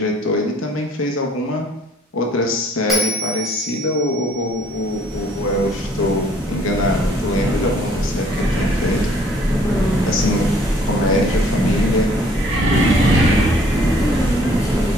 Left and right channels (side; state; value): both; normal; correlation 0.59